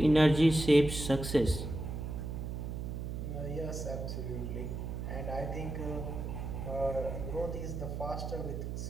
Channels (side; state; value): right; noise; hum, 5 dB below the sound